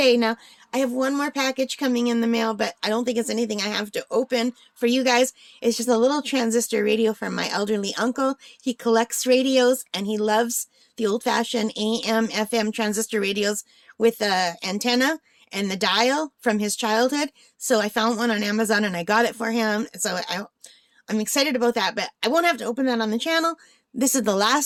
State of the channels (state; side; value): identical; both; correlation 1.00